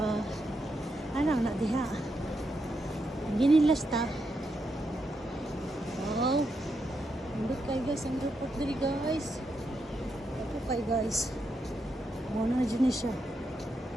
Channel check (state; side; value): normal; both; correlation 0.83